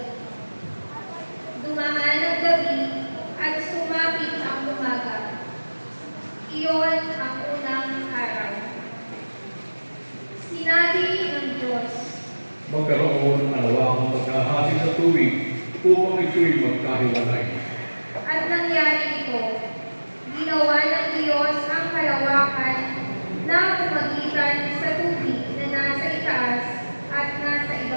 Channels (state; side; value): inverted; both; correlation -1.00